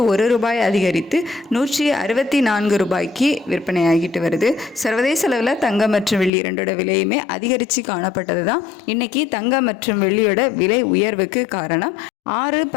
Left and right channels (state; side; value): drops out; right; at 6.3 s